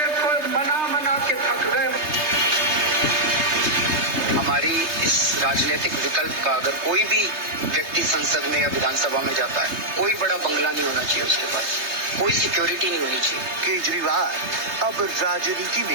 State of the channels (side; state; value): left; late; 3.3 ms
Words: को मना के थक गए। हमारी इस राजनीतिक विकल्प का अगर कोई भी व्यक्ति संसद में या विधानसभा में जाता है, कोई बड़ा बंगला नहीं होना चाहिए उसके पास, कोई सिक्योरिटी नहीं होनी चाहिए। केजरीवाल अब राजनीति